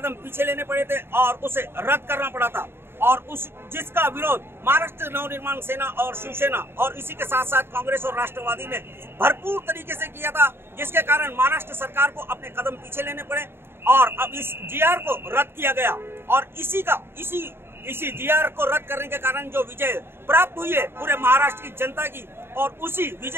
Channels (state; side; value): late; left; 0.11 ms